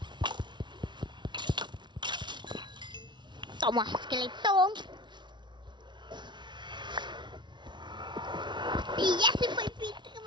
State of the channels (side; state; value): left; late; 0.22 ms